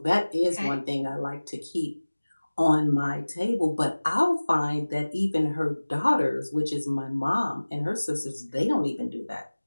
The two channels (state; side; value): inverted; both; correlation -1.00